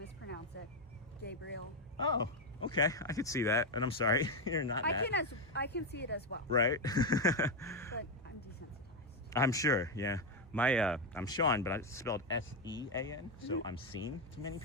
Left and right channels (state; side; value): normal; both; correlation 0.06